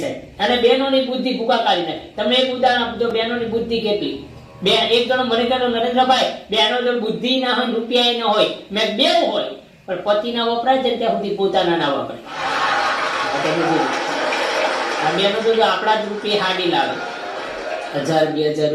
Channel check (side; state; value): both; identical; correlation 1.00